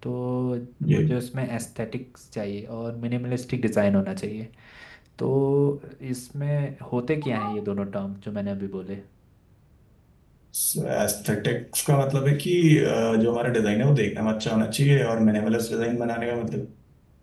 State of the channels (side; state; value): both; identical; correlation 1.00